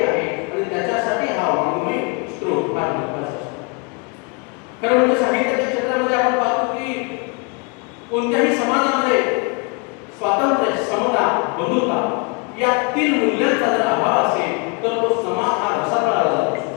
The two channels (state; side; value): quieter; right; 32.8 dB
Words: आहे आणि त्याच्यासाठी हा वाङ्मय स्त्रोत फार महत्त्वाचा असतो. खरं म्हणजे साहित्याच्या क्षेत्रामध्ये आपण पाहतो की कोणत्याही समाजामध्ये स्वातंत्र्य, समता, बंधुता या तीन मूल्यांचा जर अभाव असेल तर तो समाज हा रसातळाला जात